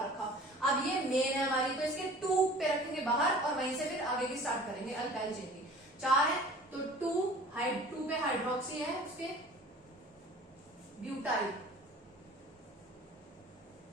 रखा। अब ये मेन है हमारी, तो इसके 2 पे रखेंगे बाहर और वहीं से फिर आगे की स्टार्ट करेंगे अल्काइल चेन की। 4 है तो 2 पे हाइड्रोक्सी है, उसके ब्यूटाइल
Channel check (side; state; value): both; normal; correlation 0.46